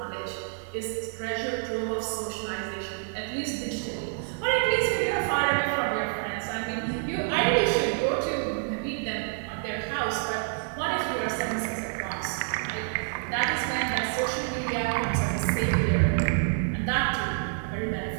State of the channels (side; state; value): left; silent; digital silence